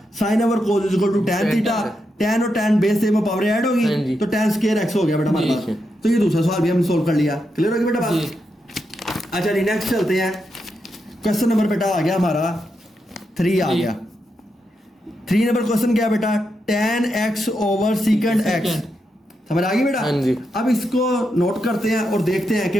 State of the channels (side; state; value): both; normal; correlation 0.84